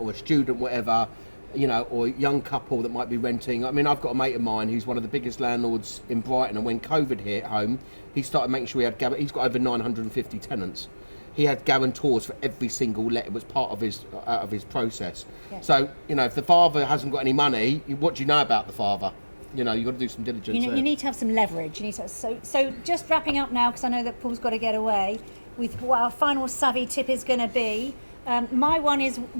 a student, whatever, you know, or a young couple that might be renting. I mean, I've got a mate of mine who's one of the biggest landlords in Brighton, and when COVID hit home, he started making sure he's got over 950 tenants. He had guarantors for every single let. It was part of his process. Yeah. So, you know, if the father hasn't got any money, what do you know about the father? You know, you've got to do some diligence. You need to have some leverage. You need to. So just wrapping up now, because I know that Paul's got to get away, with what our final savvy tip is going to be. My one is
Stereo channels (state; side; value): inverted; both; correlation -1.00